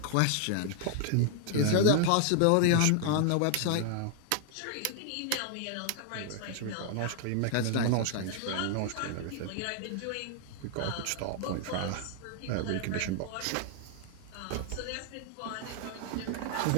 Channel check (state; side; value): different; both; correlation 0.00